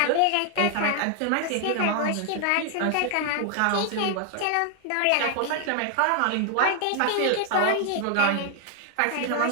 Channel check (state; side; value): different; both; correlation 0.00